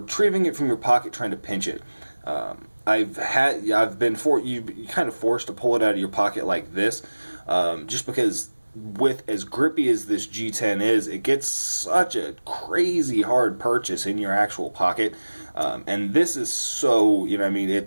it from your pocket, trying to pinch it. You're kind of forced to pull it out of your pocket like this, just because with as grippy as this G10 is, it gets such a crazy hard purchase in your actual pocket, and this is so,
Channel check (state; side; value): inverted; both; correlation -1.00